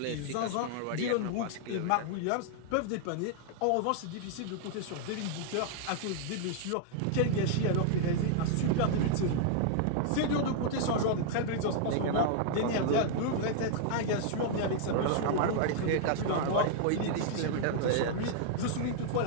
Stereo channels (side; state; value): both; different; correlation -0.01